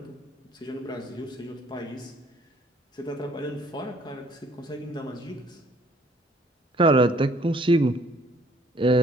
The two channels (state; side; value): normal; both; correlation 0.60